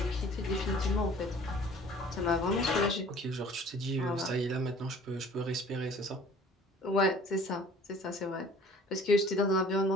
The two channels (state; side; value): normal; both; correlation 0.50